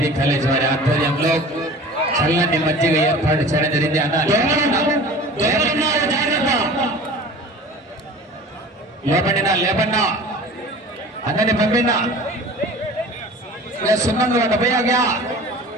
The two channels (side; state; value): both; normal; correlation 0.41